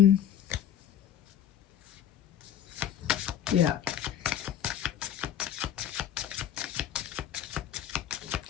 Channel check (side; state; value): right; quieter; 10.1 dB